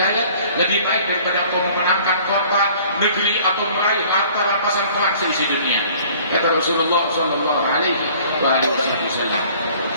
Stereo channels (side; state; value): both; inverted; correlation -0.53